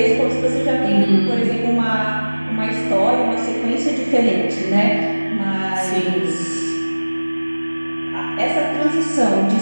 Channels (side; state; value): both; inverted; correlation -1.00